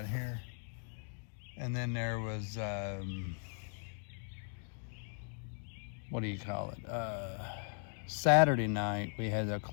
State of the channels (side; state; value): right; silent; 52 dB below the other